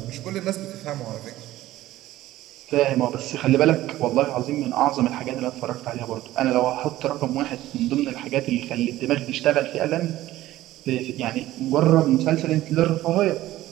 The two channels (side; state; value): left; quieter; 15.3 dB